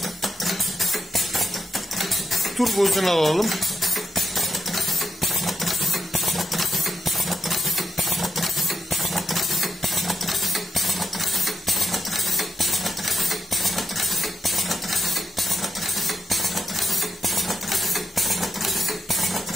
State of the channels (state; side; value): normal; both; correlation 0.82